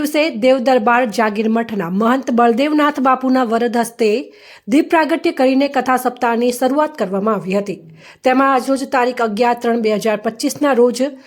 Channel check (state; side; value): identical; both; correlation 1.00